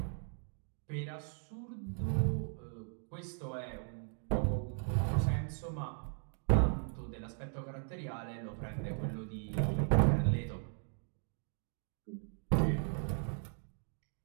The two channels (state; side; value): silent; left; 53 dB below the other